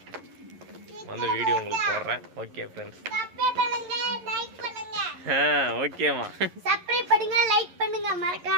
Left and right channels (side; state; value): left; late; 11 ms